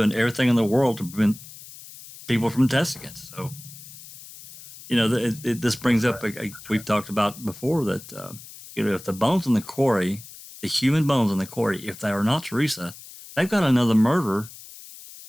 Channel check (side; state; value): left; noise; hiss, 17 dB below the sound